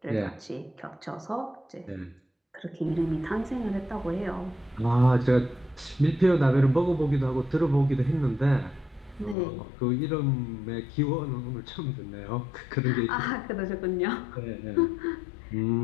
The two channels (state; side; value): drops out; right; at 9.3 s